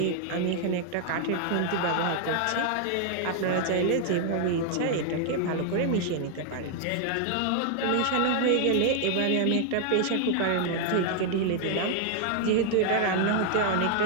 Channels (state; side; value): different; both; correlation 0.00